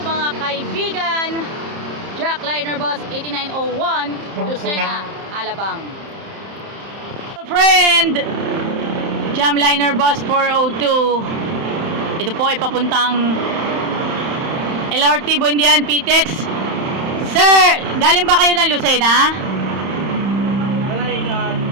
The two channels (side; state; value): left; late; 30 ms